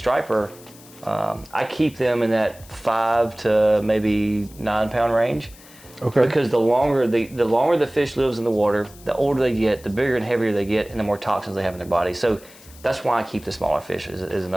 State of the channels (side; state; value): left; noise; hiss, 22 dB below the sound